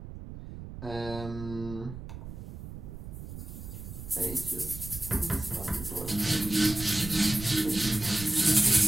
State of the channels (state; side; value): noise; right; rumble, 11 dB below the sound